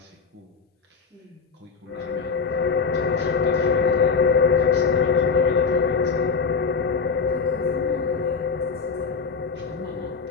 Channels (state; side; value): quieter; right; 5.3 dB